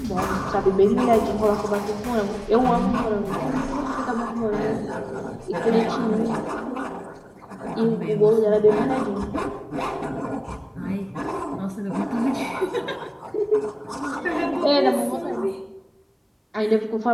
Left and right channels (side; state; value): both; identical; correlation 1.00